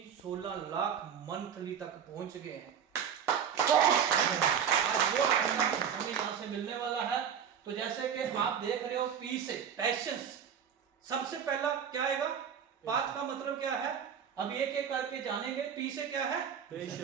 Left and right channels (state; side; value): quieter; left; 7.9 dB